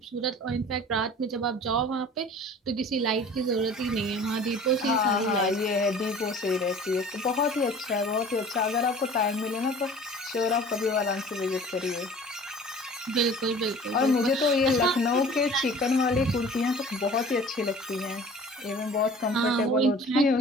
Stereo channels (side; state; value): both; normal; correlation 0.45